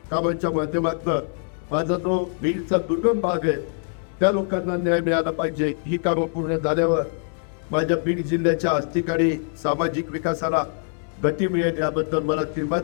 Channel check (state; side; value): silent; right; 57 dB below the other